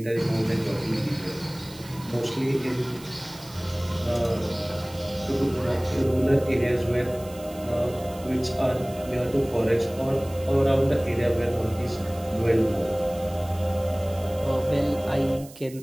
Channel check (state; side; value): noise; right; hiss, 20 dB below the sound